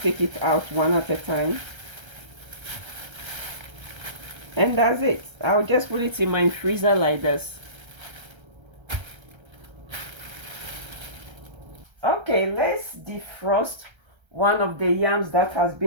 it out one at a time. And that's it. I'll just put it in my freezer like this. Okay, let's defrost one of the yams that has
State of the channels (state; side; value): late; left; 1.3 ms